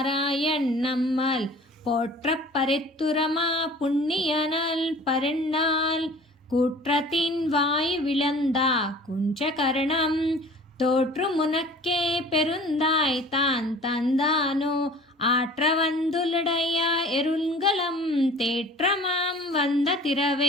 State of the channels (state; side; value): normal; both; correlation 0.46